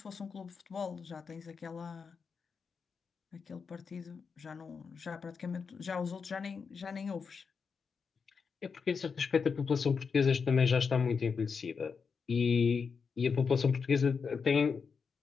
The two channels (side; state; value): right; quieter; 5.6 dB